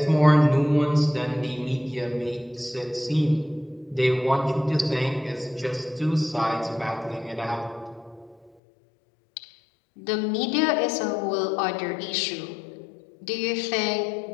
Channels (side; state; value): right; drops out; at 8.5 s